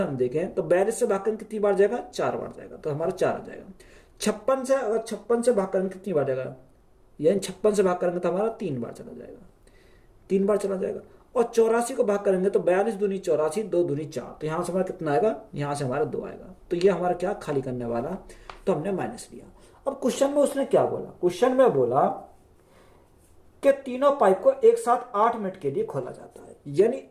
हम देखें तो 42 से भाग कितनी बार जाएगा? 4 बार जाएगा। तो हमारा 4 आ जाएगा। 56 से अगर 56 से भाग करेंगे कितनी बार जाएगा? यानी 56 से भाग करेंगे तो हमारा 3 बार चला जाएगा। 3 बार चला जाएगा। और 84 को भाग करेंगे तो 42 दूनी 84, 2 दूनी 4। तो यहां से हमारा कितना आएगा? यहां से हमारा 2 आएगा। तो ये हमारा क्या? खाली करने वाला, तो हमने माइनस लिया। अब क्वेश्चन में उसने क्या बोला? क्वेश्चन में बोला कि तीनों पाइप को एक साथ 8 मिनट के लिए खोला जाता है। यानी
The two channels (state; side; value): identical; both; correlation 1.00